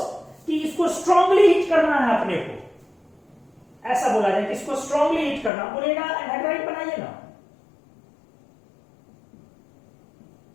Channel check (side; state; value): right; drops out; at 5.5 s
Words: कि इसको स्ट्रांगली हिट करना है अपने को, ऐसा बोला जाए कि इसको स्ट्रांगली हिट करना, बोलेगा एनहाइड्राइड बनाइए ना।